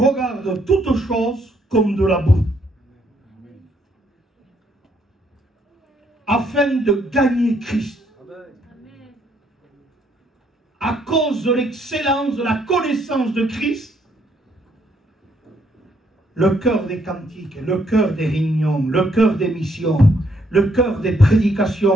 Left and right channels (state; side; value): normal; both; correlation 0.71